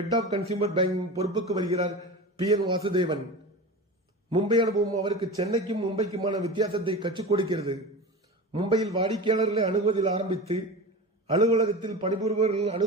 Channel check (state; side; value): normal; both; correlation 0.29